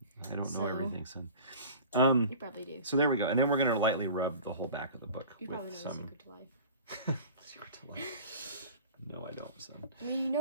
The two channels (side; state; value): both; inverted; correlation -0.41